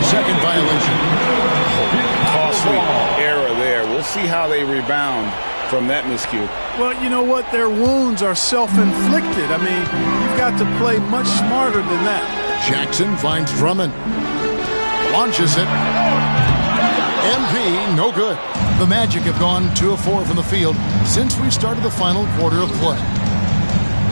violation. Costly error there. We'll see how they rebound from that miscue. Well, you know what? Their wounds are self-inflicted. I mean, you've got to play much smarter than that. Jackson finds Drummond. Launches it. MP, no good. The Magic have gone 2 of 4 from the field since we started the final quarter of play.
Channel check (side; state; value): both; inverted; correlation -1.00